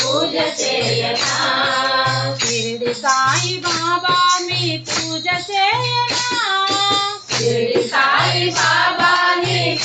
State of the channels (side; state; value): both; identical; correlation 1.00